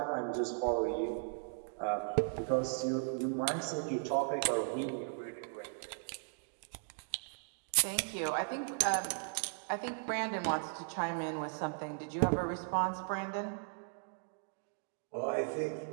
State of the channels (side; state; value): left; silent; digital silence